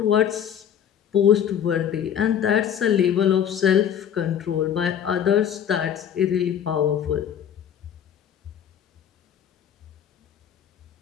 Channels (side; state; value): right; quieter; 9.0 dB